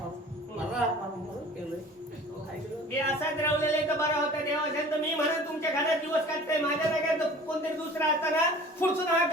म्हणून केलंय ऐकलं? ते असाच रावलेले तर बरा होता देवा असेल तर मी म्हणत तुमच्या घरात दिवस काढताय माझ्या जागेत तर कोणतरी दुसरा असताना पुढसून हात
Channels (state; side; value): normal; both; correlation 0.45